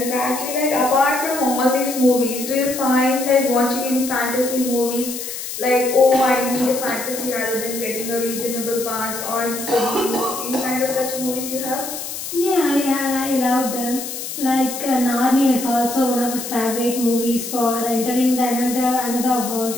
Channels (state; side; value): noise; left; hiss, 7 dB below the sound